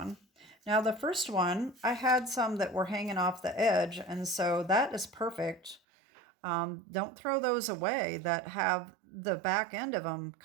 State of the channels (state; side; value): drops out; left; at 5.8 s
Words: Now the first one, I had some that were hanging off the edge, and so that is perfect. Don't throw those away that have the back end of them